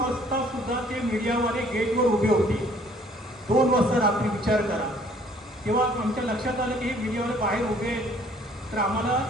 सुद्धा ते मीडियावाले गेटवर उभे होते. 2 वाजता रात्री विचार करा. तेव्हा आमच्या लक्षात आलं की हे मीडियावाले बाहेर उभे आहेत. तर आम्हाला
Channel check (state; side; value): normal; both; correlation 0.59